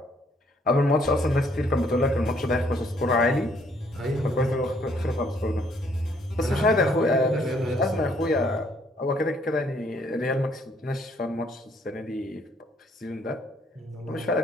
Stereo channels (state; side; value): normal; both; correlation 0.66